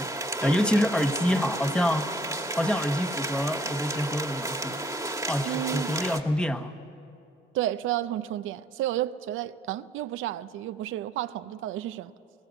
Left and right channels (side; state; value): both; normal; correlation 0.62